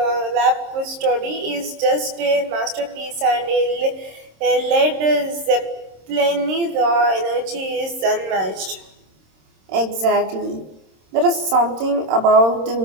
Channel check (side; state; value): left; late; 26 ms